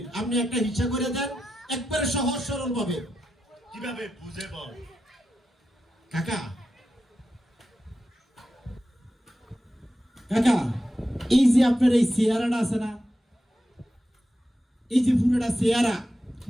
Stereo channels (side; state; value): both; normal; correlation 0.89